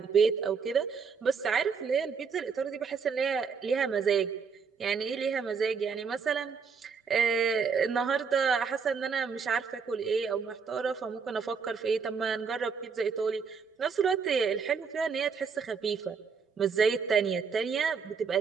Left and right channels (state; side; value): quieter; left; 5.7 dB